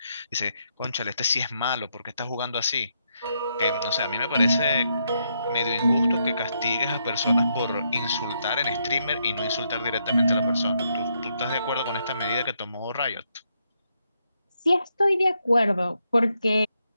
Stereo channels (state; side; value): inverted; both; correlation -0.79